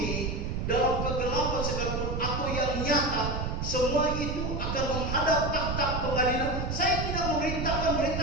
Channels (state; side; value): noise; right; rumble, 2 dB below the sound